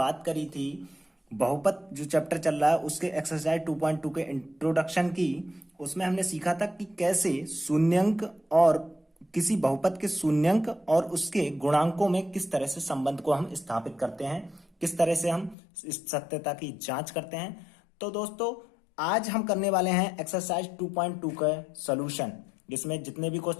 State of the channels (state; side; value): drops out; right; at 15.6 s